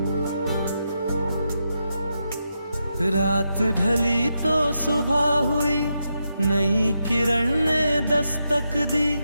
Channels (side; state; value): both; inverted; correlation -0.85